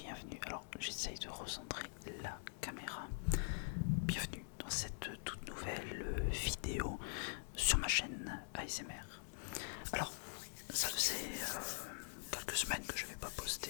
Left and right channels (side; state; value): right; silent; digital silence